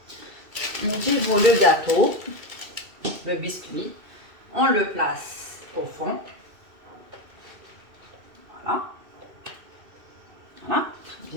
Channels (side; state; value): left; late; 2.6 ms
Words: نجيبو لو غاتو لو بسكويت on le place au fond. Voilà, très